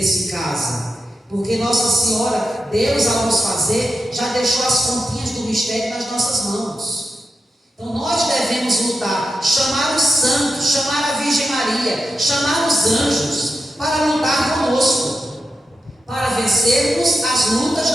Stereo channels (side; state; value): both; normal; correlation 0.89